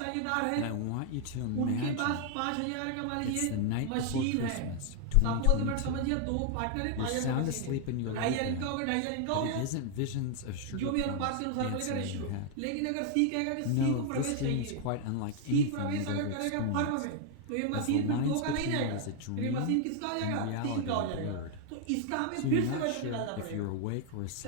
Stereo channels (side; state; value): both; different; correlation 0.00